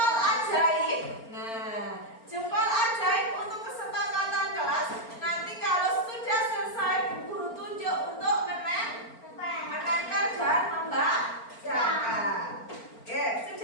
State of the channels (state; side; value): late; right; 4.4 ms